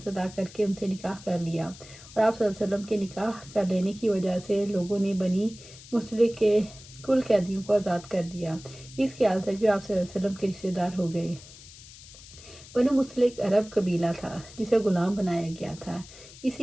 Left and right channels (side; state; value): left; noise; hiss, 19 dB below the sound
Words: ادا کر کے ان سے نکاح کر لیا، اور آپ صلی اللہ علیہ وسلم کے نکاح کر لینے کی وجہ سے لوگوں نے بنی مستلق کے کل قیدیوں کو آزاد کر دیا، اس خیال تک بھی آپ صلی اللہ علیہ وسلم کے رشتہ دار ہو گئے۔ بنو مستلق عرب قبیلہ تھا جسے غلام بنایا گیا تھا،